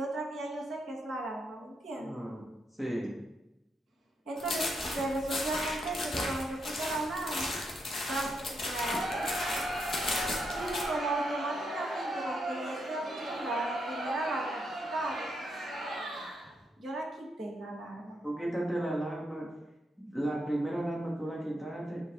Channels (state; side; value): normal; both; correlation 0.80